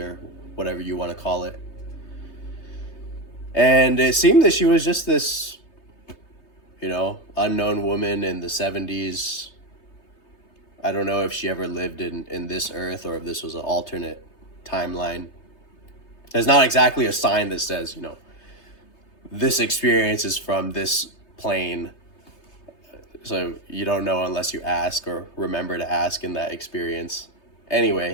whatever you want to call it. And it seemed that she was just this, unknown woman in the 70s. I don't know if she ever lived in this earth or if this was an alternate timeline. There's not exactly a sign that says, this experience is from this plane. So you don't know unless you ask or remember to ask in that experience.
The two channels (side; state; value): right; late; 3.3 ms